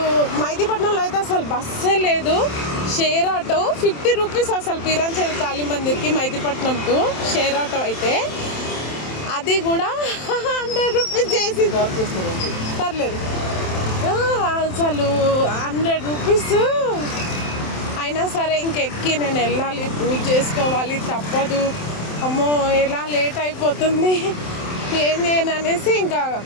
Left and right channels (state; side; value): late; right; 27 ms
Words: మైదీపట్నంలో అయితే అసలు బస్సే లేదు. షేర్ ఆటో 50 రూపీస్ అసలు పీరాంచేరి కాళీ మందిర్కి మైదీపట్నం టు షేర్ ఆటో అయితే, అది కూడా 100 రూపీస్ చేసి పర్లేదు. అసలు 100 రూపీస్ అయినా సరే ఇంకెక్కి నేను వెళ్ళాలి, పూజ చేసుకోవాలి, తప్పదు. అమ్మో ఎలా లేట్ అయిపోతుంది, ఏం చేయను అనేసి ఇంకా